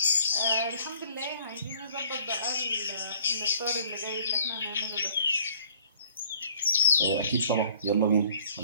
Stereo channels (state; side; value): inverted; both; correlation -0.56